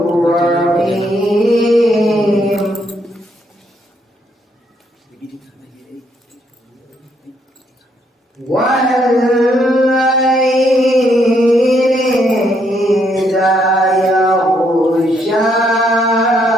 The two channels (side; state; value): both; normal; correlation 0.73